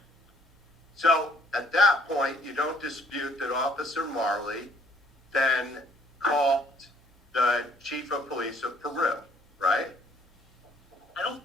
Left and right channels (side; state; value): both; normal; correlation 0.62